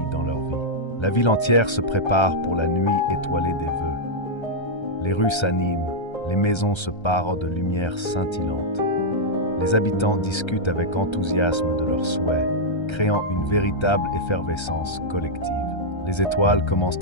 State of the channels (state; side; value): late; right; 1.3 ms